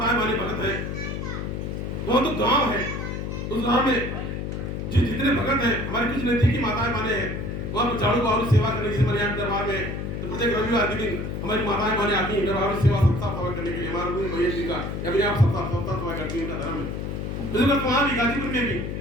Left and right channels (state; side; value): noise; left; hum, 4 dB below the sound